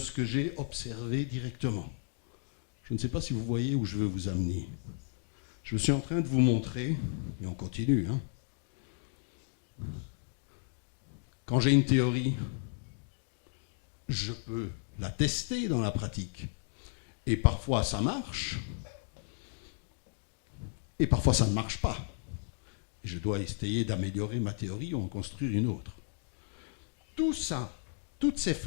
que j'ai observé directement. Je ne sais pas si vous voyez où je veux vous amener. Je suis en train de vous montrer, et on continue, quand j'ai une théorie, je peux la tester dans la pratique. Et parfois ça marche, et parfois ça ne marche pas. Je dois essayer d'améliorer ma théorie ou en construire une autre. Tout ça, toutes ces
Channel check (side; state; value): right; silent; digital silence